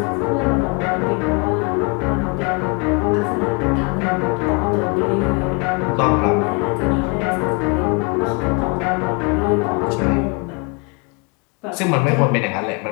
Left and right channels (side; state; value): right; quieter; 32.4 dB